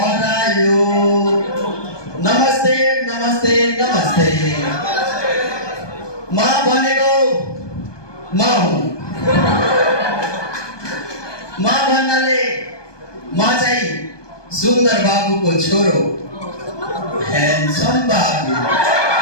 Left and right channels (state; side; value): late; right; 1.2 ms